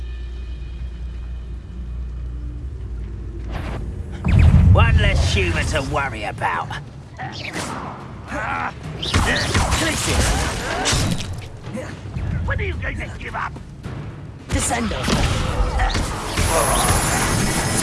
One less human to worry about. When are you going to give up? Descendo.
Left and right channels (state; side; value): identical; both; correlation 1.00